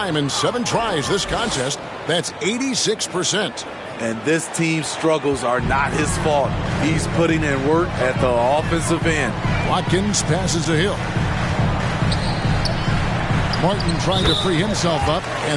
in 7 tries this contest. That's 86%. And this team's struggles are not his fault. He's putting in work at the offensive end. Watkins passes to Hill. Martin trying to free himself up.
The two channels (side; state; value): both; identical; correlation 1.00